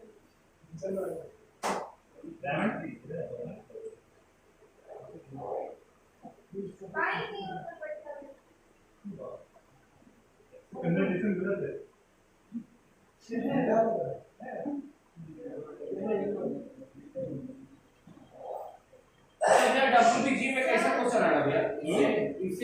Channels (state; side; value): identical; both; correlation 1.00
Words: WBG में कैसा क्वेश्चन आएगा भैया?